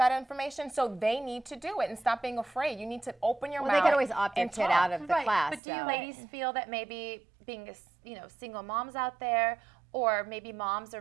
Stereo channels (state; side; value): drops out; left; at 5.6 s